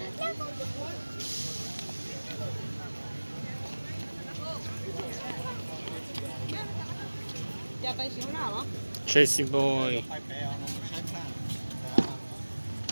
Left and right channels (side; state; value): both; inverted; correlation -1.00